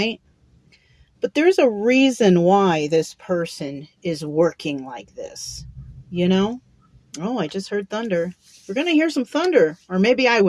But there's a reason why this person is working like this, you know? Oh, I just heard thunder. We're going to hear some thunder, or maybe I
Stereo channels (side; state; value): both; identical; correlation 1.00